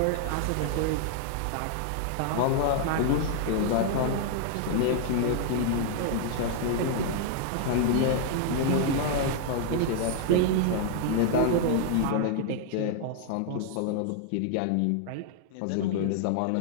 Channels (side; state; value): both; different; correlation -0.01